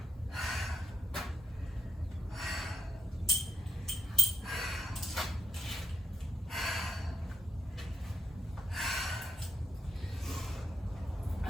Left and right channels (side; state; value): both; normal; correlation 0.84